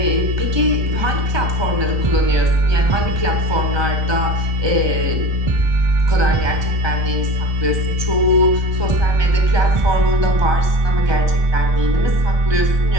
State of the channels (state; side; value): late; left; 1.2 ms